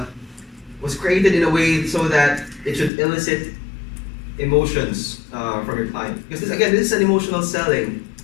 was created in a way so that it should elicit emotions from your client. Because this is an emotional selling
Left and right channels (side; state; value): right; drops out; at 2.9 s